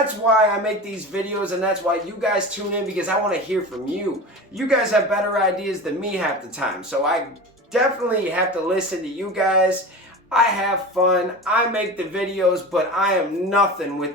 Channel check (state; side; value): normal; both; correlation 0.30